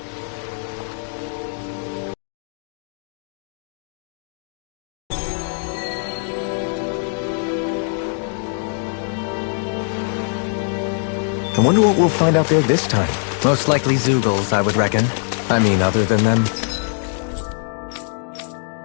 I wonder what we'll find out there this time. Most likely Zeugles, I would reckon. I mean, other than them.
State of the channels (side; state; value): right; silent; 55 dB below the other